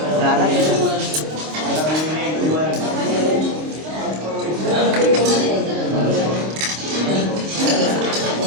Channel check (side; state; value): left; late; 26 ms